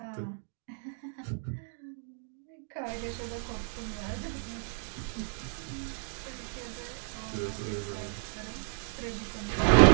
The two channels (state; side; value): silent; left; 56 dB below the other